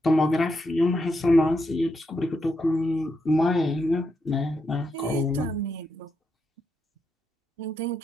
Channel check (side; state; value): both; normal; correlation 0.82